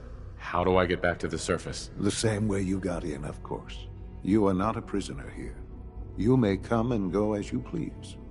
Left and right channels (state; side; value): identical; both; correlation 1.00